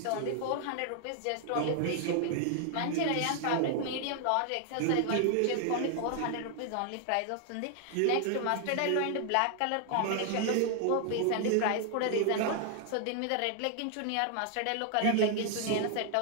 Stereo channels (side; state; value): both; different; correlation 0.00